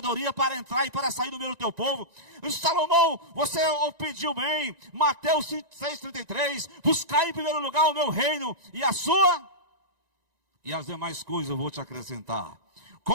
para entrar e para sair do meio do teu povo. Eu disse: Salomão, você pediu bem. Mateus 6,33. Buscai em primeiro lugar o meu reino e a sua. e as demais coisas eu vou te acrescentar.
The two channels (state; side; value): late; left; 1.9 ms